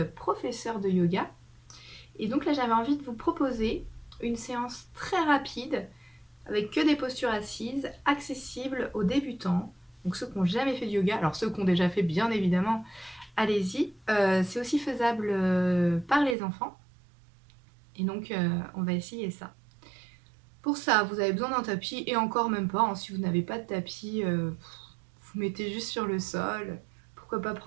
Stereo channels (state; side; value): drops out; left; at 16.4 s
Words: professeur de yoga. Et donc là, j'avais envie de vous proposer une séance très rapide avec que des postures assises, accessibles aux débutants, donc ceux qui n'ont jamais fait de yoga. Alors ceux qui ont déjà fait, bien évidemment, allez-y. C'est aussi faisable par les enfants. Et donc, on va essayer ça. Pour ça, vous avez besoin d'un tapis, et encore même pas, hein, si vous n'avez pas de tapis, vous mettez juste sur le sol. Pourquoi pas